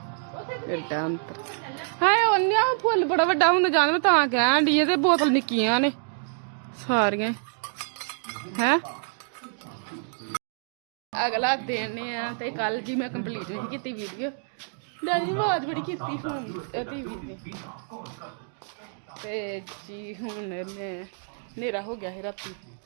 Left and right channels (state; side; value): silent; left; digital silence